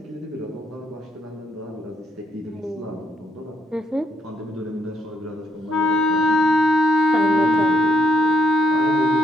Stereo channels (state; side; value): normal; both; correlation 0.74